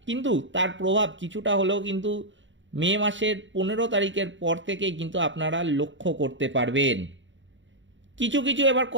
কিন্তু তার প্রভাব কিছুটা হলেও কিন্তু মে মাসের 15 তারিখের পর থেকেই কিন্তু আপনারা লক্ষ্য করতে পারবেন। কিছু কিছু এবার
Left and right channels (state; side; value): late; left; 0.55 ms